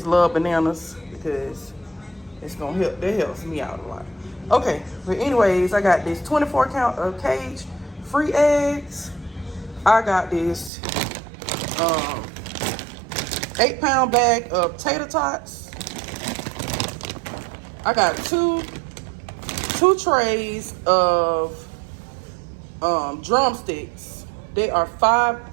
love bananas, because it's gonna help. That helps me out a lot. Okay, but anyways, I got this 24 count of cage free eggs. I got this 8-pound bag of tater tots. I got two trays of drumsticks. They are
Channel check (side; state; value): left; drops out; at 10.7 s